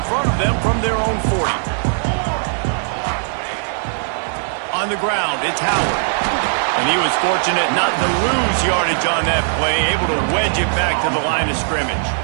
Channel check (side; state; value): left; silent; 60 dB below the other